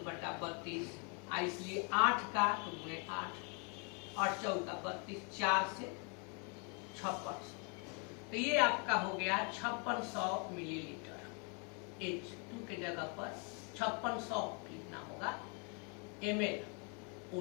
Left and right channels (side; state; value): right; quieter; 35.9 dB